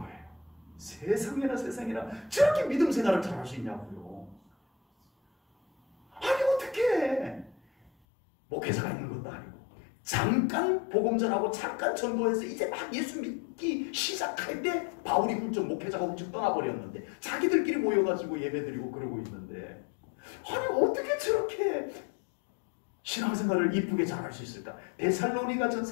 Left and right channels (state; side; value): drops out; right; at 7.9 s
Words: 세상에나 저렇게 믿음 생활을 잘할 수 있냐고요. 아니 어떻게 목회자가 있는 것도 아니고 잠깐 복음 전하고 잠깐 전도해서 이제 막 예수 믿기 시작할 때 바울이 훌쩍 목회자가 훌쩍 떠나버렸는데, 자기들끼리 모여가지고 예배드리고 그러고 있는데, 아니 어떻게 저렇게 신앙생활을 이쁘게 잘할 수 있을까? 데살로니가